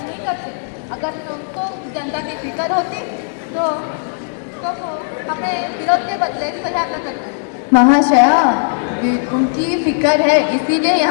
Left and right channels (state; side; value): silent; right; digital silence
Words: करते। अगर उनको जनता की फिक्र होती तो वो हमें विरोध के बदले सहायता करते। महाशया, उनकी फिक्र है इसीलिए